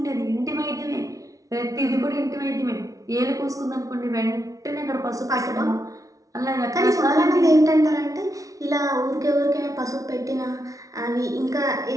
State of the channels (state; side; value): late; left; 0.17 ms